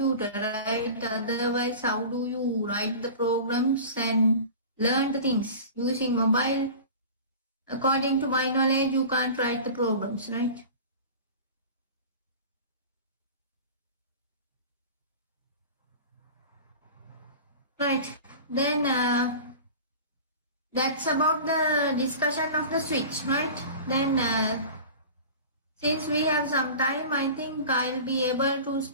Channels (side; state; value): both; inverted; correlation -0.36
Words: right? Otherwise, how do you write the programs and learn the things? Using mobile, according to my knowledge, you can't write the programs, right? Right. Then that's about the discussion of the switch, right? Then since we have some time, I think I'll be able to